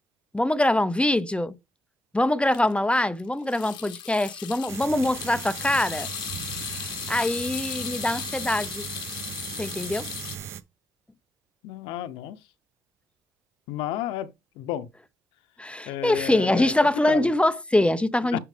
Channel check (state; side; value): normal; both; correlation 0.85